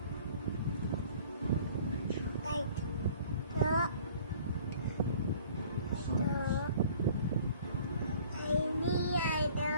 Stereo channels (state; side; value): inverted; both; correlation -0.51